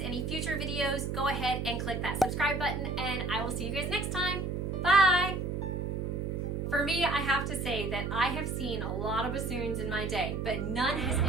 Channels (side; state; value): right; noise; hum, 2 dB below the sound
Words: future videos, go ahead and click that subscribe button, and I will see you guys next time. Bye! For me, I have to say that I have seen a lot of bassoons in my day, but none has